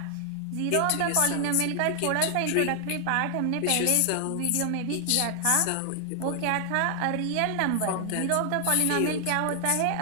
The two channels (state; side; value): different; both; correlation 0.00